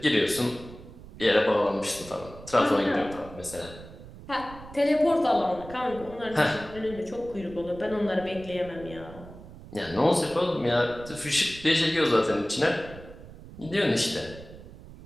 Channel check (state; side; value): noise; right; rumble, 17 dB below the sound